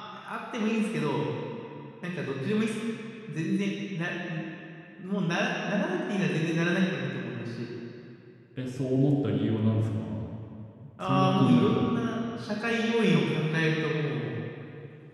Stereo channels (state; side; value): identical; both; correlation 1.00